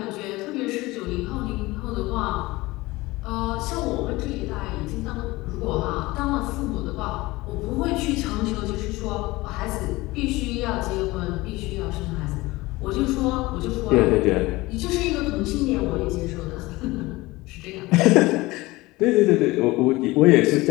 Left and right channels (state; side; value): quieter; right; 20.6 dB